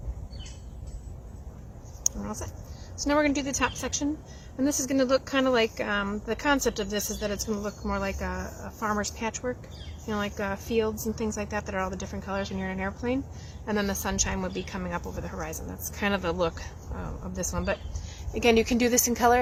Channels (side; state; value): both; identical; correlation 1.00